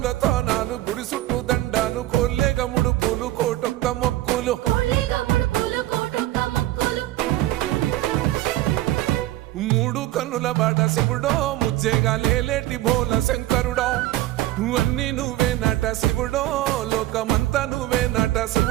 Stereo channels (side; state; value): left; quieter; 15.8 dB